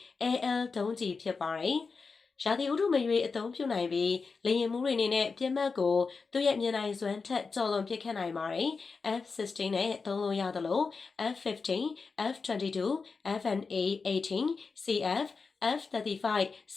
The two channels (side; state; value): right; quieter; 4.7 dB